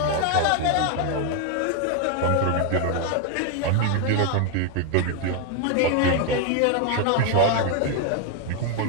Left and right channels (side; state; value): both; different; correlation 0.01